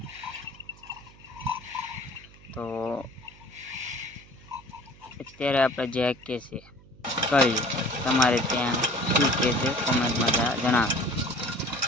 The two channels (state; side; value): noise; right; hum, 23 dB below the sound